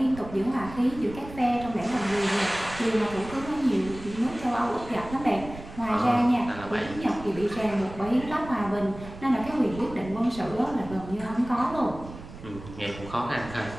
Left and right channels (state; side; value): noise; right; rumble, 14 dB below the sound